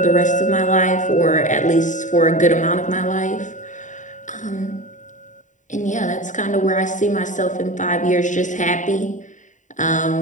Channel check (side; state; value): right; late; 0.36 ms